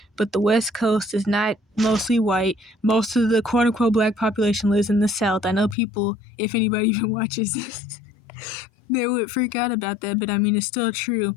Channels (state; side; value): drops out; right; at 5.8 s